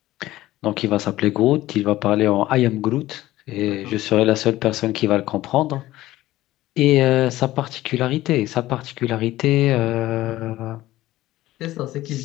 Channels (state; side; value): quieter; right; 16.0 dB